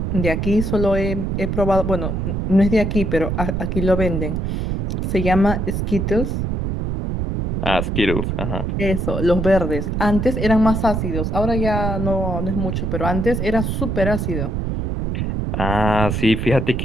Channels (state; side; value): noise; right; rumble, 1 dB below the sound